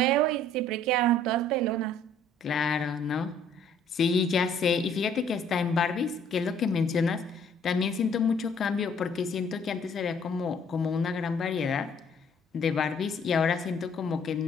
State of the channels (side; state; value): both; normal; correlation 0.60